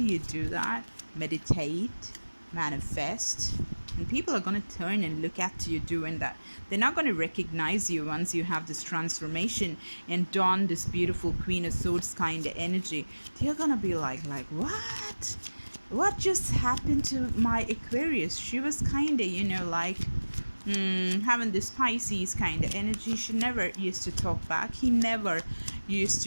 you do that? Meditate, manifest, and people are going to turn and look at you doing that. They're not going to recognize you once you have this transformation and don this beautiful Queen of Swords kind of energy. They're going to be like, what just happened to my Aquarius? She was kind of, like having this Pisces kind of energy. She never used to talk back. He never used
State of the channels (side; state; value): both; inverted; correlation -1.00